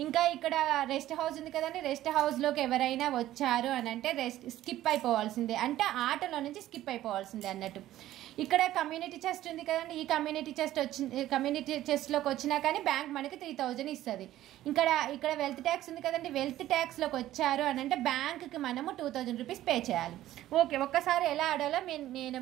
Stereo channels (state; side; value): quieter; left; 14.0 dB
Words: ఇంకా ఇక్కడ రెస్ట్ హౌస్ ఉంది కదండి, రెస్ట్ హౌస్లోకి ఎవరైనా వచ్చారు అని అంటే స్కిప్ అయిపోవాల్సిందే, అంటే ఆటలో నుంచి స్కిప్ అయిపోవాల్సిందే అన్నట్టు. ఇక్కడ కమ్యూనిటీ చెస్ట్ ఉంది కదండి, ఈ కమ్యూనిటీ చెస్ట్లోకి వచ్చినా కానీ బ్యాంక్ మనకి 3,000 ఇస్తుంది. ఇక్కడ వెల్త్ ట్యాక్స్ ఉంది కదండి, వెల్త్ ట్యాక్స్లోకి వచ్చారు అని అంటే బ్యాంక్కి మనము 2,000 రూపీస్ పే చేయాలి. ఓకే, ఒక్కసారి ఎలా ఆడాలో నేను